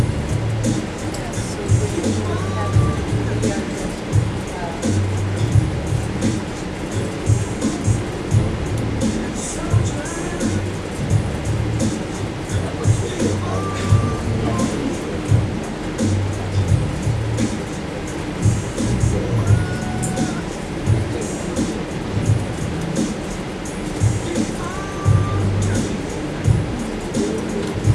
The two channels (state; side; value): identical; both; correlation 1.00